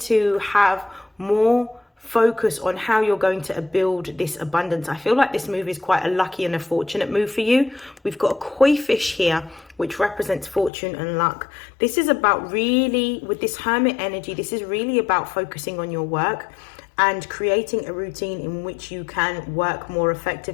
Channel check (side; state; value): right; drops out; at 10.7 s